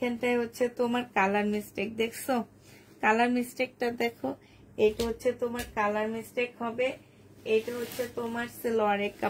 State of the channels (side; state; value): both; identical; correlation 1.00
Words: হচ্ছে তোমার কালার মিস্টেক, দেখছো কালার মিস্টেকটা দেখো। এটা হচ্ছে তোমার কালার মিস্টেক হবে। এটা হচ্ছে তোমার সালোয়ারের